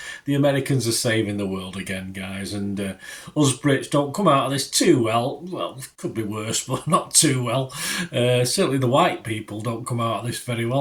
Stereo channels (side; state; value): both; identical; correlation 1.00